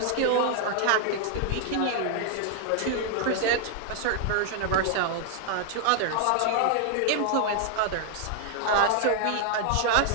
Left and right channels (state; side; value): different; both; correlation 0.00